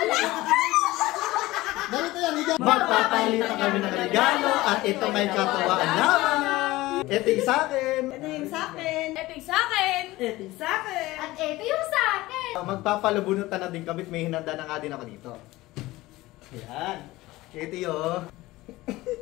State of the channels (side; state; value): right; quieter; 18.6 dB